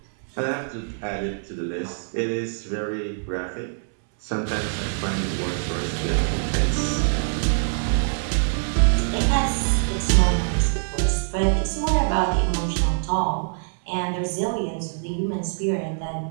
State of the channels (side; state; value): left; silent; 62 dB below the other